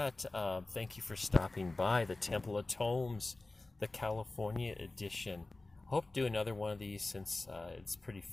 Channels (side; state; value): right; quieter; 3.1 dB